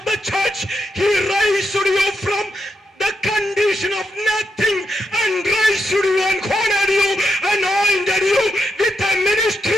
the church, he raised you from the condition of nothing and raised you and honored you, anointed you with a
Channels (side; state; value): both; normal; correlation 0.83